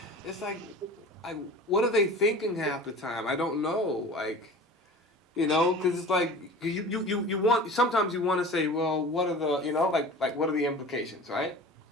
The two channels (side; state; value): both; normal; correlation 0.39